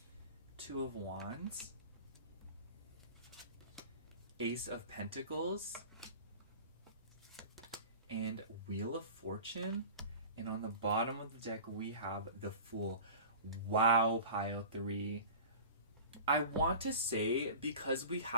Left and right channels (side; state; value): both; inverted; correlation -0.37